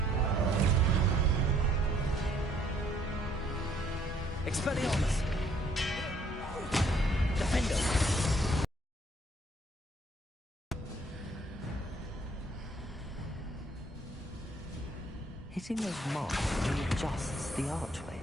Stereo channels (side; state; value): both; normal; correlation 0.64